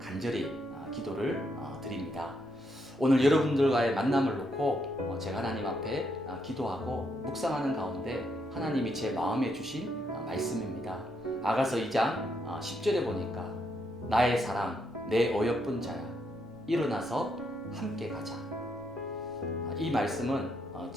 기도를 드립니다. 오늘 여러분들과의 만남을 놓고 제가 하나님 앞에 기도하고 묵상하는 가운데 하나님이 제 마음에 주신 말씀입니다. 아가서 2장 10절에 보니까 나의 사랑 내 어여쁜 자야 일어나서 함께 가자. 이 말씀은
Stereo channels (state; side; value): normal; both; correlation 0.77